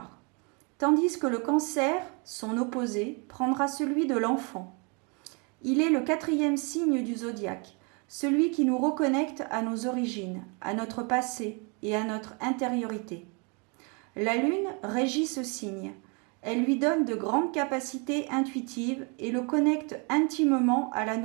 tandis que le Cancer, son opposé, prendra celui de l'enfant. Il est le 4e signe du zodiaque, celui qui nous reconnecte à nos origines, à notre passé et à notre intériorité. La Lune régit ce signe. Elle lui donne de grandes capacités intuitives et le connecte intimement à la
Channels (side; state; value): left; quieter; 33.4 dB